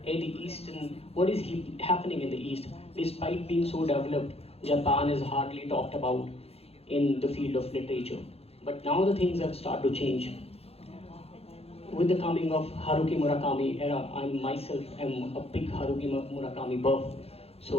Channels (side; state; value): right; late; 0.29 ms